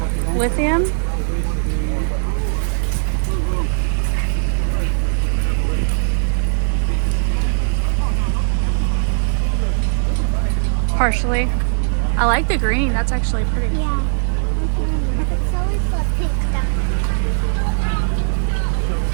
Lithium. Partially. I like the green. That's actually pretty. Yeah. It's always the pink stuff.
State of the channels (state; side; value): silent; left; 67 dB below the other